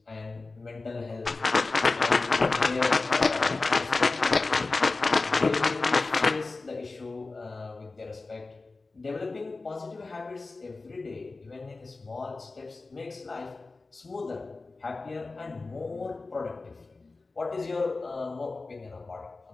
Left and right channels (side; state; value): right; quieter; 3.6 dB